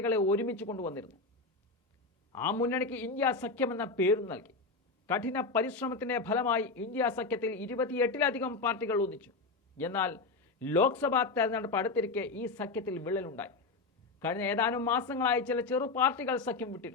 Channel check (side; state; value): right; quieter; 3.8 dB